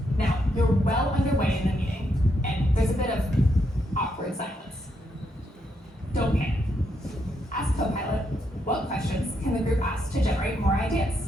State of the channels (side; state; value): both; normal; correlation 0.78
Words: Now, you're well underway in the meeting, and there's a bit of awkward silence. Don't panic. Ask Copilot, what questions can the group ask to generate more